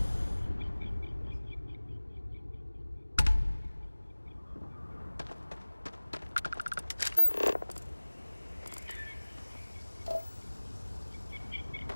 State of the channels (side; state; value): both; inverted; correlation -1.00